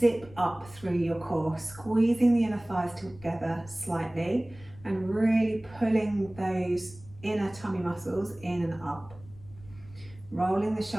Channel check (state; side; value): noise; left; rumble, 21 dB below the sound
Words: up through your core, squeezing the inner thighs together slightly and really pulling those inner tummy muscles in and up. Rolling the